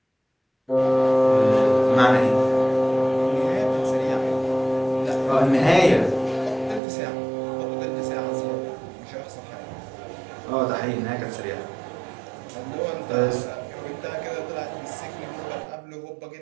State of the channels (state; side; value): drops out; left; at 6.8 s